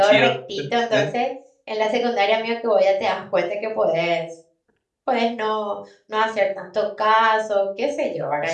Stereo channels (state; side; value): identical; both; correlation 1.00